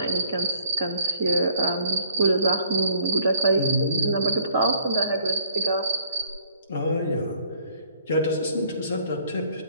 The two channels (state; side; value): inverted; both; correlation -0.59